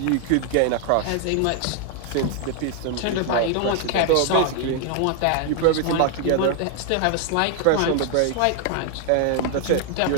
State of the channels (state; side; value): different; both; correlation 0.00